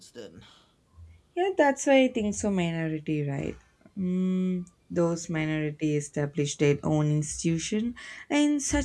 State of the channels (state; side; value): identical; both; correlation 1.00